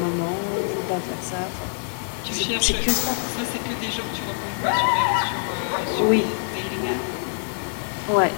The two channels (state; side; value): silent; right; digital silence